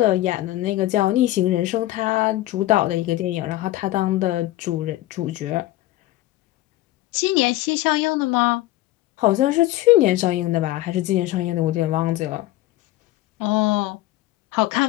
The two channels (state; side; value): quieter; right; 16.2 dB